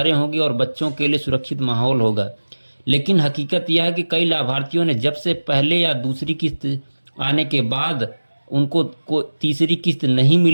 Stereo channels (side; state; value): both; inverted; correlation -1.00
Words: होंगी और बच्चों के लिए सुरक्षित माहौल होगा। लेकिन हकीकत यह है कि कई लाभार्थियों ने जब से पहले या दूसरी किस्त आने के बाद उनको तीसरी किस्त नहीं